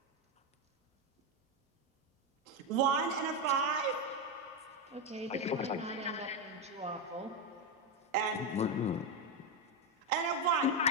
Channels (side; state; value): both; normal; correlation 0.08